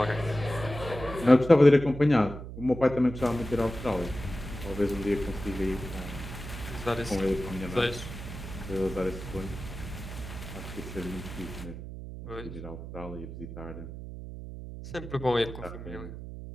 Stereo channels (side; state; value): right; noise; hum, 10 dB below the sound